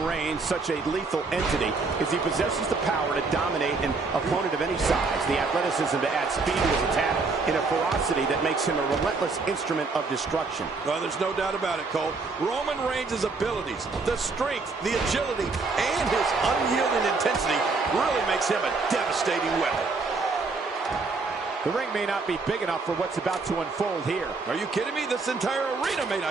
Reigns such a lethal entity is he possesses the power to dominate an opponent of any size, the athleticism to add speed to his attack, and a ferocity that makes him a relentless instrument of destruction. Well, there's no doubt about it, Cole. Roman Reigns' abilities, the strength, the agility, and his unyielding intensity really makes him a devastating weapon. The ring may not be big enough for what's about to unfold here. Are you kidding me? This entire arena may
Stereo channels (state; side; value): quieter; left; 4.0 dB